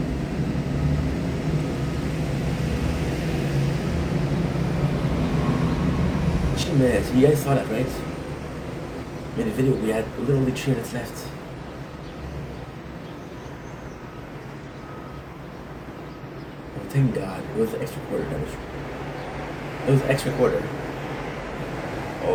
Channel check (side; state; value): both; identical; correlation 1.00